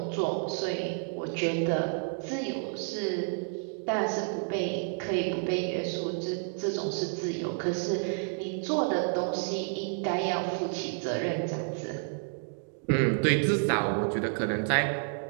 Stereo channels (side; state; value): left; silent; 58 dB below the other